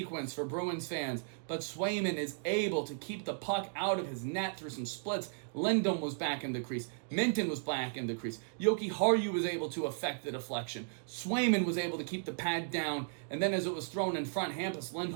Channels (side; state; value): left; silent; digital silence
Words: for Bruins fans, but Swayman is able to keep the puck out of his net through some splits. Lindholm was back in the crease. Minton was back in the crease. Yoki Haru was able to effect the deflection. Swayman was able to keep the pad down, and then as it was thrown in front, Hampus